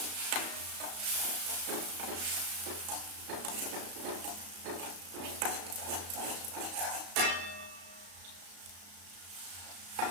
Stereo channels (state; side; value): late; left; 34 ms